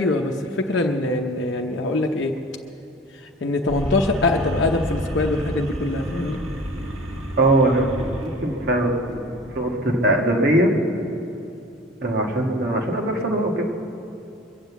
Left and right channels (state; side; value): normal; both; correlation 0.41